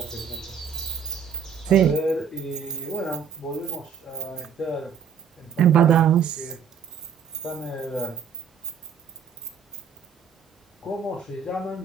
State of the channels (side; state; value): left; quieter; 7.1 dB